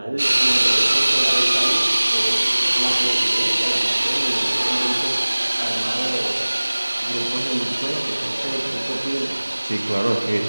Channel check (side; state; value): both; inverted; correlation -1.00